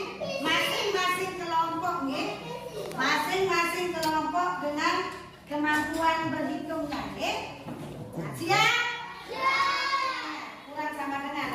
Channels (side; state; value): both; identical; correlation 1.00